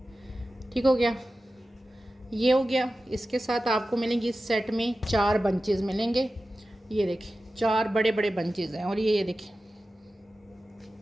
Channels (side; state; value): both; normal; correlation 0.94